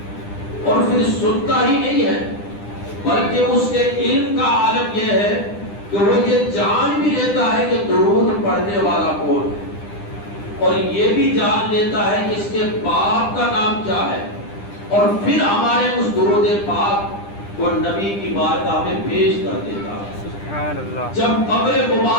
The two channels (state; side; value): late; right; 9.9 ms